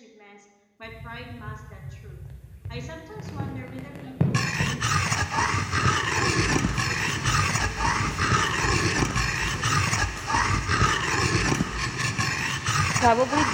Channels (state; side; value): identical; both; correlation 1.00